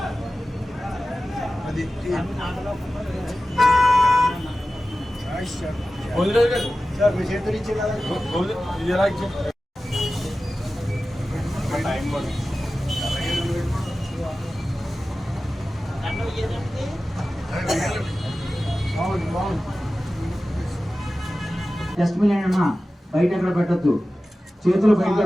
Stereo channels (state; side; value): normal; both; correlation 0.95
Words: డస్ట్బిన్ అయినా బయట ఎక్కడ పెట్టద్దు, చేతులు బయట